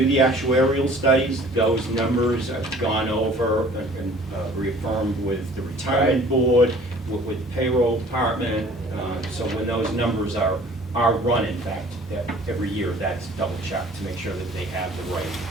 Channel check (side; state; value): both; normal; correlation 0.51